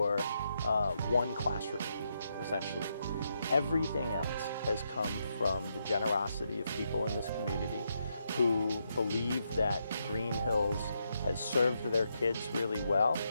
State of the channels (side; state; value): both; inverted; correlation -0.80